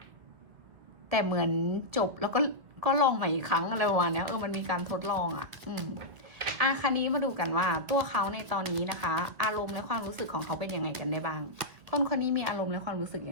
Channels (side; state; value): left; late; 2.0 ms